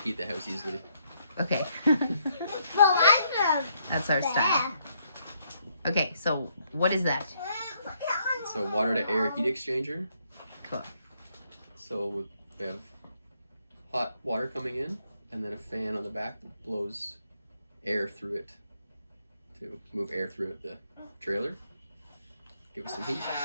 heat the house easily. okay. That's our style. Okay, so what is that? So water to air heat exchanger. Cool. So we have hot water coming in, and then a fan on the back that blows air through it to move air through the trailer. Give us some heat.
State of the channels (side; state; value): both; inverted; correlation -0.72